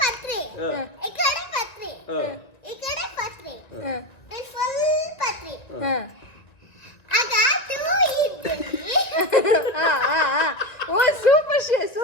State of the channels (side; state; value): right; late; 1.9 ms